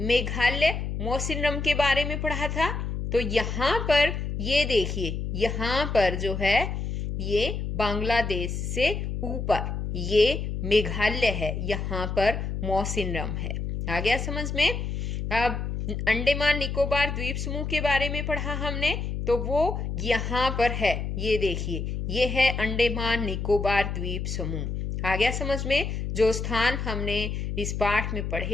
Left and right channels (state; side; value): noise; left; hum, 3 dB below the sound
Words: मौसिनराम के बारे में पढ़ा था। तो यहाँ पर ये देखिए, यहाँ पर जो है ये बांग्लादेश से ऊपर ये मेघालय है, यहाँ पर मौसिनराम है। आ गया समझ में? अब अंडमान निकोबार द्वीप समूह के बारे में पढ़ा हमने, तो वो यहाँ पर है। ये देखिए, ये है अंडमान निकोबार द्वीप समूह। आ गया समझ में? जो स्थान हमने इस पाठ में